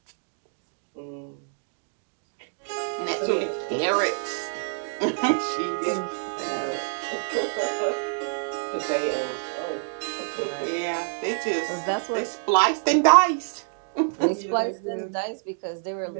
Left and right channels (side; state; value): left; silent; digital silence